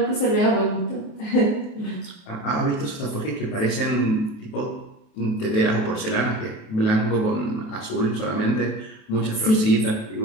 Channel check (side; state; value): right; late; 28 ms